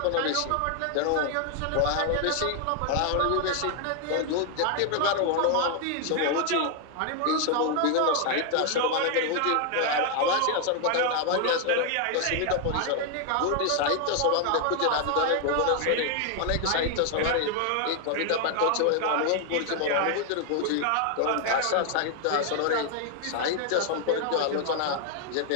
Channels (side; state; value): both; different; correlation 0.00